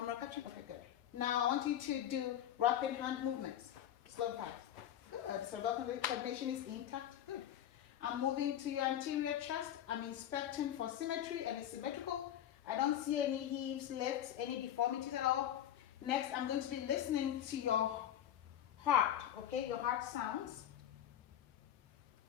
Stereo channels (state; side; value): quieter; right; 10.9 dB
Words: catching? Okay, good. Now I want you to do rapid hand movements, slow and fast. Good. Cerebellar coordination is intact. Good. I'm moving to your anterior chest. I'm inspecting for symmetry and it's symmetrical. I don't see any heaves, lifts, any deformities at all. Next, I'm going to be listening to your heart, okay? Your heart sounds.